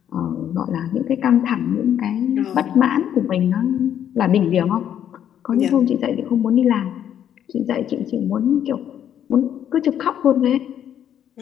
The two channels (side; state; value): right; quieter; 9.9 dB